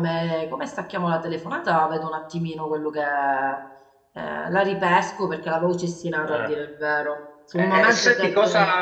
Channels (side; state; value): both; identical; correlation 1.00